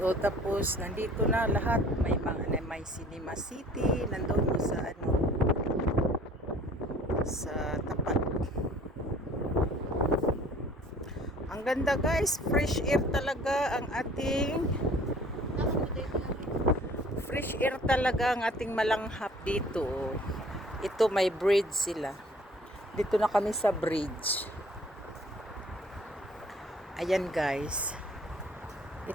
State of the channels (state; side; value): normal; both; correlation 0.52